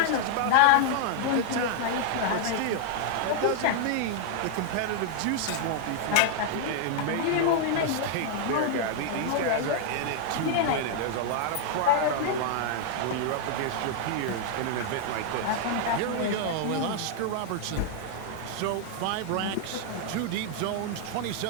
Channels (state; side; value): different; both; correlation 0.00